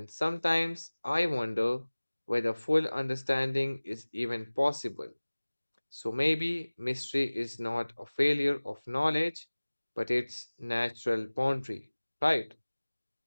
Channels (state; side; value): inverted; both; correlation -1.00